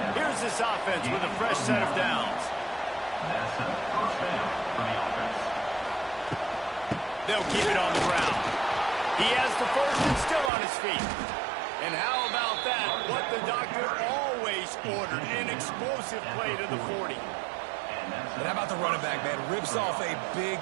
Here's this offense with a fresh set of downs. They'll keep it on the ground. He has the first and still on his feet. And how about that? What the doctor always ordered, an explosive play to the 40. And how about the running back, man? Rips off a big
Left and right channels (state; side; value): drops out; left; at 10.5 s